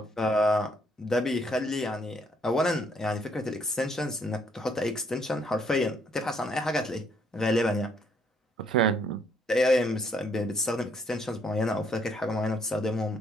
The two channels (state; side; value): normal; both; correlation 0.68